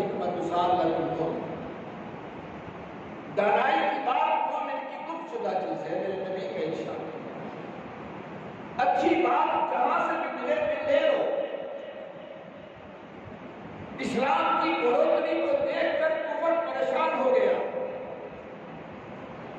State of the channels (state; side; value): identical; both; correlation 1.00